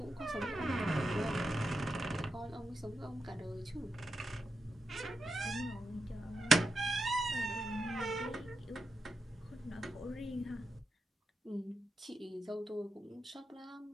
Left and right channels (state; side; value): normal; both; correlation 0.87